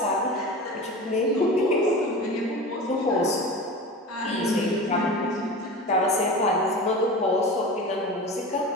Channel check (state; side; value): normal; both; correlation 0.31